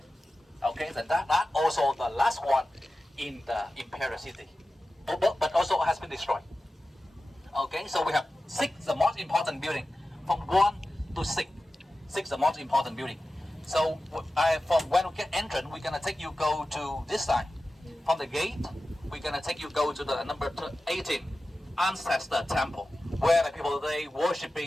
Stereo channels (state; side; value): normal; both; correlation 0.94